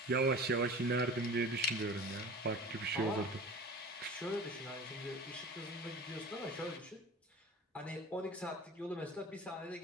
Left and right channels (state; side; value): normal; both; correlation 0.38